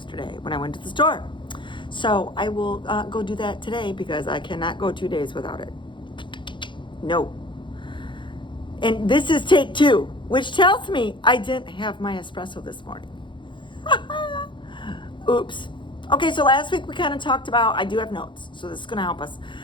when I went to the store. So I will go do that today because I cannot go 2 days without it. No. And this is take 2, which tells me I didn't have my espresso this morning. Oops. Okay, so last week we kind of talked about, I do have notes, so this is going to help us.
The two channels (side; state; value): right; late; 0.23 ms